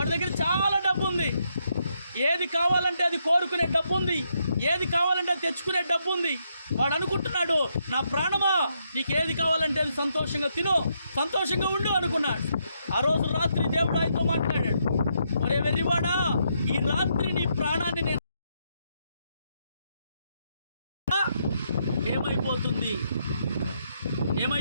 దగ్గర చాలా డబ్బు ఉంది, ఏది కావాలంటే అది కోరుకునే డబ్బు ఉంది, ఏది కావాలంటే అది తెచ్చుకునే డబ్బు ఉంది. వాడు అనుకుంటున్నాడు, నా ప్రాణమా నీకు ఏది కావాలంటే అది సంతోషంగా తిను, సంతోషంగా ఉండు అనుకున్నాడు. ఆ రోజు రాత్రి దేవుడు ఆయనతో మాట్లాడాడు, ఒరే వెర్రివాడా, ఈ రాత్రి నీ ప్రాణాన్ని నేను ఏమైపోతుంది.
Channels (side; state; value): both; inverted; correlation -0.77